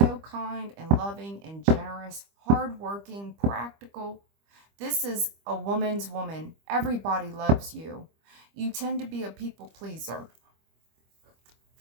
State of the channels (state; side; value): late; left; 25 ms